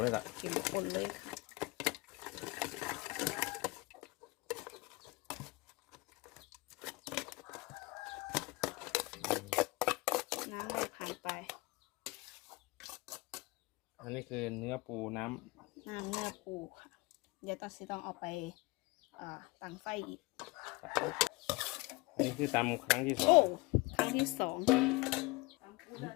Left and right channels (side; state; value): right; quieter; 24.0 dB